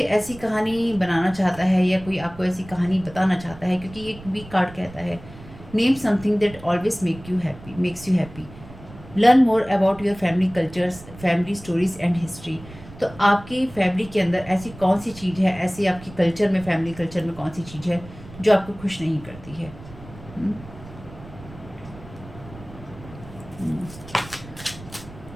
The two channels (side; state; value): right; noise; rumble, 18 dB below the sound